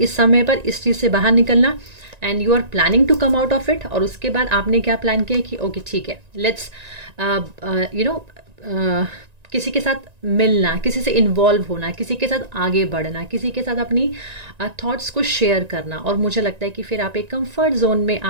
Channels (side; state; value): left; late; 1.9 ms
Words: समय पर इस चीज़ से बाहर निकलना, and you are planning to come out of it. और उसके बाद आपने क्या प्लान किया कि ओके ठीक है, लेट्स किसी के साथ मिलना, किसी से इन्वॉल्व होना, किसी के साथ आगे बढ़ना, किसी के साथ अपनी थॉट्स को शेयर करना। और मुझे लगता है कि फिर आप एक कंफर्ट जोन में